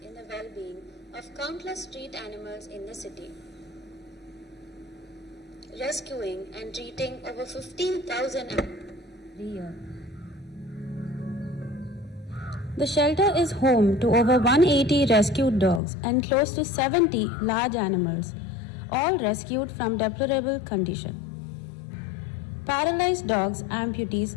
in the well-being of countless street animals in the city, rescuing and treating over 15,000 animals every year. The shelter is home to over 180 rescued dogs and close to 70 large animals, all rescued from deplorable condition. Paralyzed dogs,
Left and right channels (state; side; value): drops out; right; at 15.8 s